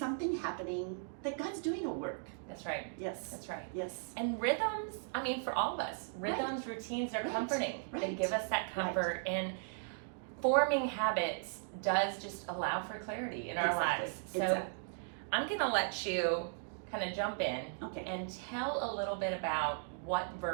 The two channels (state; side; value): silent; left; digital silence